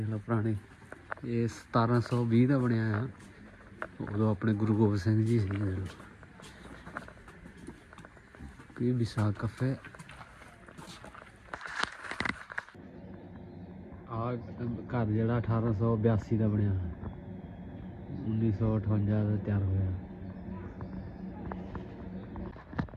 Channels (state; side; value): identical; both; correlation 1.00